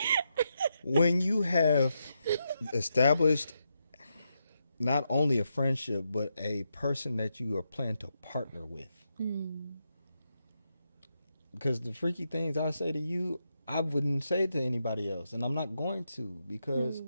when you have established not only a friendship but a person that you are planning to partner with. Because the freaky things I say to you, I wouldn't say to anybody else, and I'm not going to because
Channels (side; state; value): both; inverted; correlation -0.84